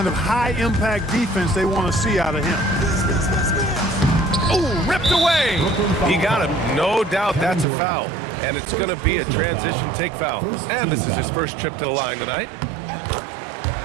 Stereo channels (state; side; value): drops out; left; at 7.7 s